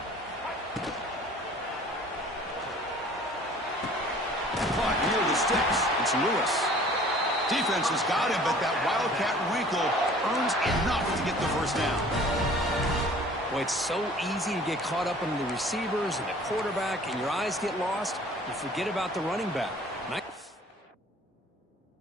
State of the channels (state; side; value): normal; both; correlation 0.50